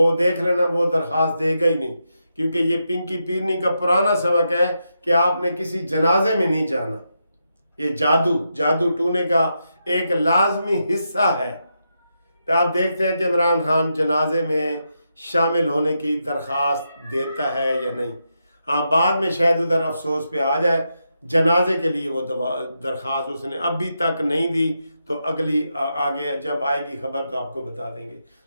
دیکھ لینا وہ درخواست دے گا ہی نہیں، کیونکہ یہ پنکی پیرنی کا پرانا سبق ہے کہ آپ نے کسی جنازے میں نہیں جانا۔ یہ جادو ٹونے کا ایک لازمی حصہ ہے۔ تو آپ دیکھتے ہیں کہ عمران خان جنازے میں شامل ہونے کی درخواست دیتا ہے یا نہیں۔ ہاں بعد میں شاید ادھر افسوس پہ آ جائے، جنازے کے لیے وہ درخواست اس نے ابھی تک نہیں دی، تو اگلی آگے جب آئے گی خبر تو آپ کو بتا دیں گے۔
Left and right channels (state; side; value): inverted; both; correlation -0.84